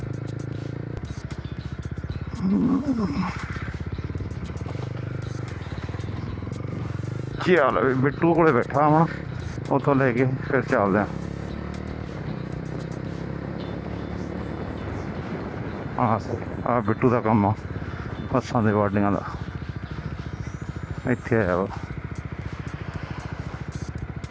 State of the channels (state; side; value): identical; both; correlation 1.00